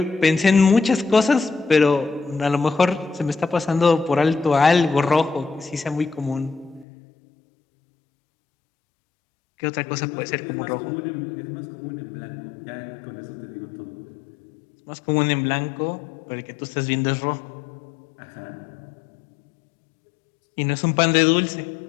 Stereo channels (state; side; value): drops out; right; at 6.9 s